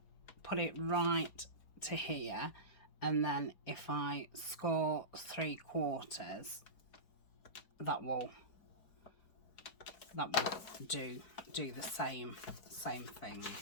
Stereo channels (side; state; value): right; late; 4.8 ms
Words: put it right to here, and then if I score 3/4, that will do the same thing.